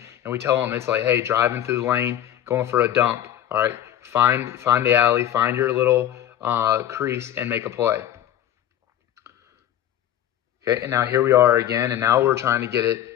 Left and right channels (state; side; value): quieter; right; 11.4 dB